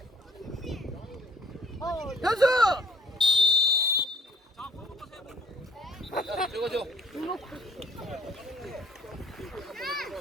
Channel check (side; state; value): both; normal; correlation 0.55